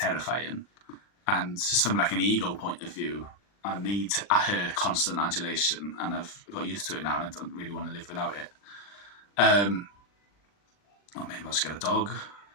And just from like an ego point of view, I need her constant adulation, and I've got used to it now, and I don't really want to live without it. Or maybe I'll just get a dog.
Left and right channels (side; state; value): right; late; 40 ms